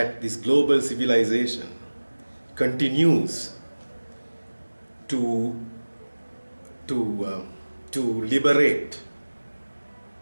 this global civilization continues to liberate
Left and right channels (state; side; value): inverted; both; correlation -1.00